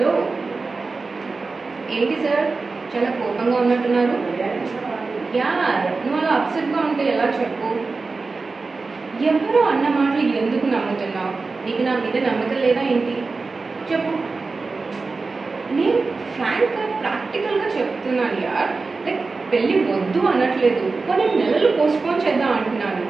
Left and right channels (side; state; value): left; quieter; 4.0 dB